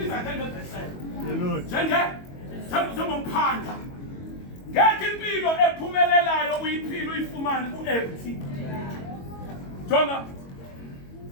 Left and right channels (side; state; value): right; late; 22 ms